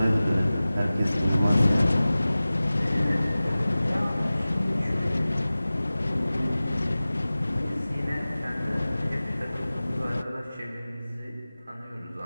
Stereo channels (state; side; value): inverted; both; correlation -0.97